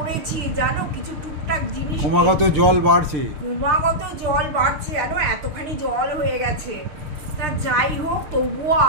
জানো। কিছু টুকটাক জিনিস ক্রমাগত জল বাড়ছে, জানো, এতখানি জল হয়ে গেছে। তা যাই হোক, তবুও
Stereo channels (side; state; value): left; late; 6.7 ms